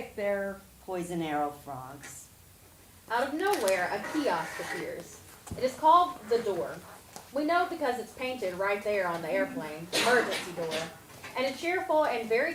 They're Poison arrow frogs. Out of nowhere, a kiosk appears. It is called the Door. We know because it's painted right there on the airplane, emergency door. And a cheerful and very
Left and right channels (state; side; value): identical; both; correlation 1.00